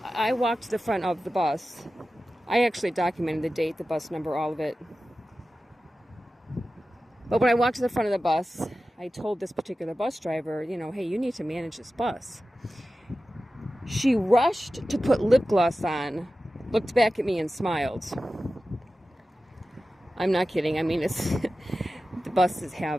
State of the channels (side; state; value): both; normal; correlation 0.94